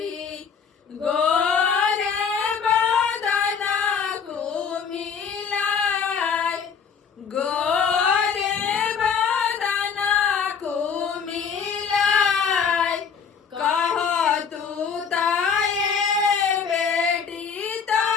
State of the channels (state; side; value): quieter; right; 6.5 dB